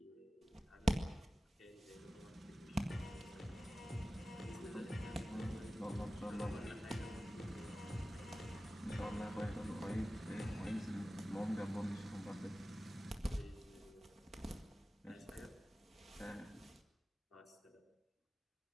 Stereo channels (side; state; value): both; normal; correlation 0.96